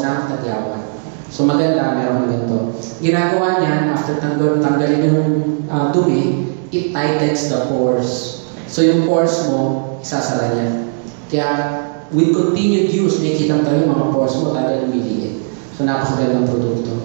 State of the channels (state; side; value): silent; left; 69 dB below the other